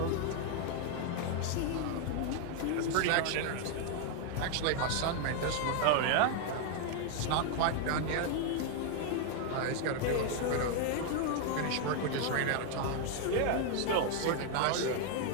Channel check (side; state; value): both; different; correlation 0.01